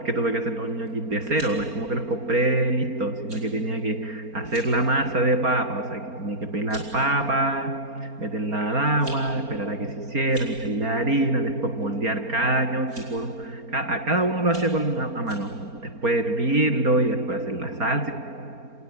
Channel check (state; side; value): late; left; 4.3 ms